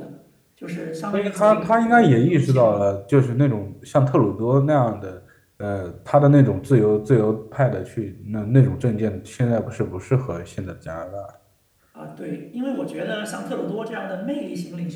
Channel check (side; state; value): both; identical; correlation 1.00